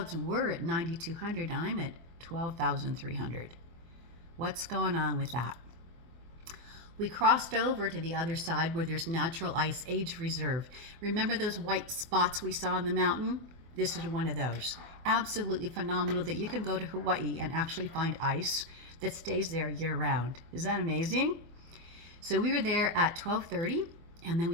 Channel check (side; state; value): left; late; 24 ms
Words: were at 9,200, and I'm at 12,300. What's going on with that? We crossed over to the other side where there's natural ice age reserve. Remember those white spots we saw on the mountain? This is one of those. Absolutely phenomenal that you can go to Hawaii and actually find ice that stays there year round. Is that amazing? So we were there at 12:30, and then